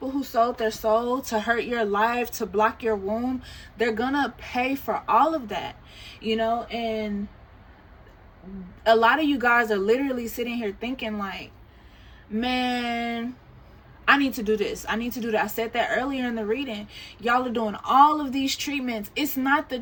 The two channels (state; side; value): identical; both; correlation 1.00